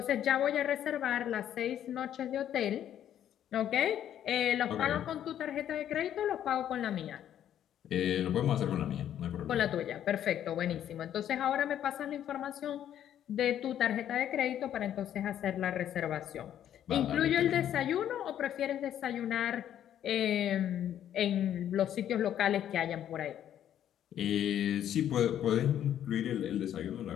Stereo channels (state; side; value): quieter; right; 10.6 dB